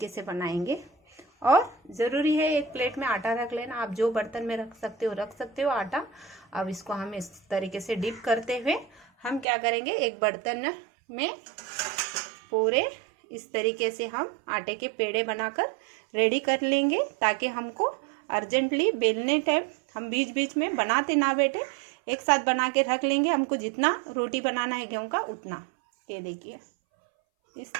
से बनाएंगे। और ज़रूरी है एक प्लेट में आटा रख लेना। आप जो बर्तन में रख सकते हो आटा। अब इसको हम इस तरीके से डिप करते हुए हम क्या करेंगे, एक बर्तन में पूरे इस तरीके से हम आटे के पेड़े बनाकर रेडी कर लेंगे, ताकि हमको अर्जेंटली बेलने टाइम हम बीच बीच में बनाते ना बैठे, एक साथ बना के रख लेंगे। हमको जितना रोटी बनाना है गेहूं का उतना। ये देखिए, इस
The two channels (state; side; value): drops out; left; at 9.5 s